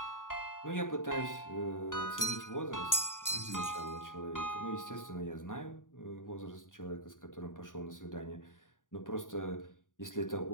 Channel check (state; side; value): late; right; 0.88 ms